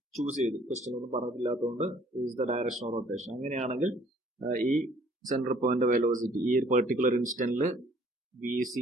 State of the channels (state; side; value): normal; both; correlation 0.58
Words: ചൂസ് ചെയ്തു, ക്വസ്റ്റ്യൻ ഒന്നും പറഞ്ഞിട്ടില്ലാത്തതുകൊണ്ട് is the direction of rotation. അങ്ങനെയാണെങ്കിൽ ഈ സെൻട്രൽ പോയിന്റ് വെലോസിറ്റി ഈ ഒരു പെർട്ടിക്കുലർ ഇൻസ്റ്റന്റിൽ V